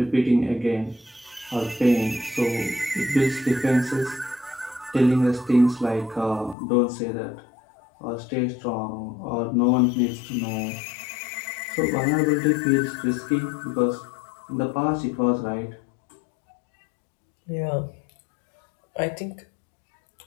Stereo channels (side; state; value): right; drops out; at 6.6 s